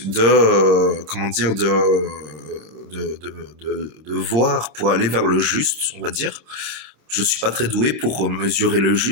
de, comment dire, de voir pour aller vers le juste, on va dire. Je suis pas très doué pour mesurer le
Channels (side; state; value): left; late; 26 ms